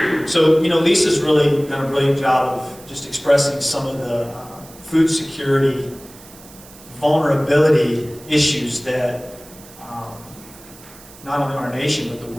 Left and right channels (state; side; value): noise; right; hiss, 21 dB below the sound